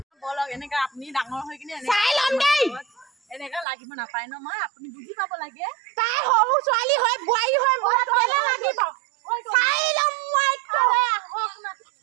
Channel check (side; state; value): left; drops out; at 3.7 s